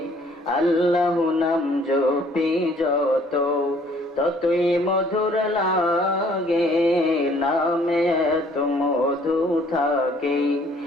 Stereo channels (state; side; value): normal; both; correlation 0.59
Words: আল্লাহ নাম জপি যত ততই মধুর লাগে নামে তো মধু থাকে